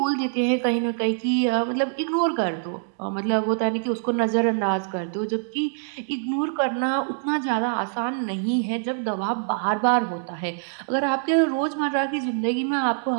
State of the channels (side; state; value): left; silent; digital silence